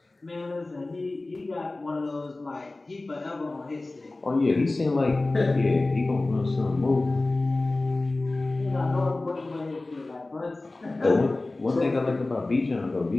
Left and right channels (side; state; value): right; quieter; 3.0 dB